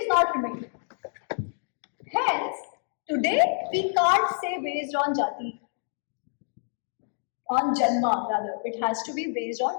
not remained. Hence, today we can't say based on jati, on janma rather. It has to be based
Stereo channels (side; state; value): right; silent; digital silence